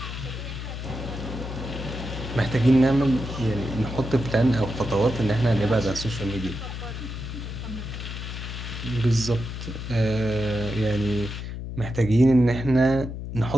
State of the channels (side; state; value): left; noise; hum, 7 dB below the sound